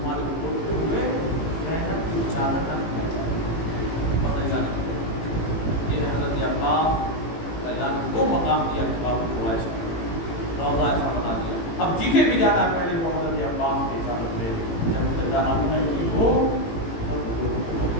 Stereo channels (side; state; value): right; late; 18 ms